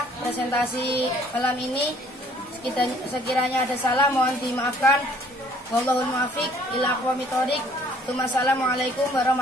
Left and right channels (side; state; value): both; normal; correlation 0.58